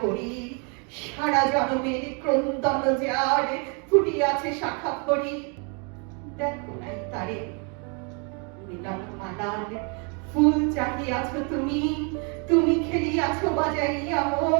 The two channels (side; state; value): left; quieter; 35.8 dB